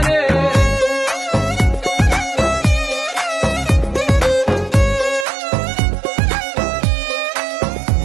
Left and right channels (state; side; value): drops out; left; at 5.2 s